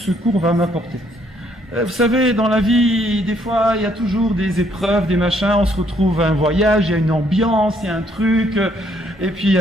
cours va m'apporter? Vous savez, dans la vie, des fois, il y a toujours des épreuves, des machins. On se retrouve à un voyage, il y a une ambiance, il y a un truc. Et puis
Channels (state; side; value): normal; both; correlation 0.68